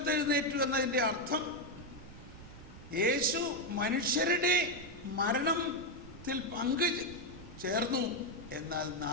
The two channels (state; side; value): noise; right; rumble, 16 dB below the sound